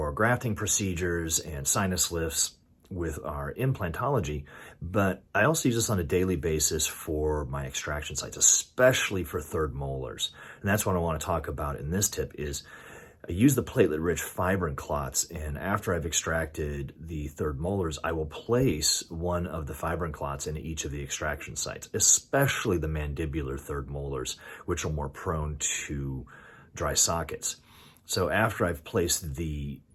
grafting procedures and sinus lifts with our implantology, but I also use this on a daily basis for my extraction sites, especially for third molars. And that's what I want to talk about in this tip is I use the platelet-rich fibrin clots, and after I've extracted the third molars, I will place one of the fibrin clots into each of the extraction sites, especially the mandibular third molars, which are more prone to dry sockets. So after I've placed the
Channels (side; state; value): both; identical; correlation 1.00